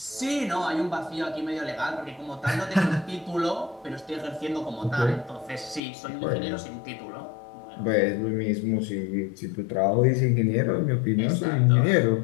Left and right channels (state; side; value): drops out; right; at 5.8 s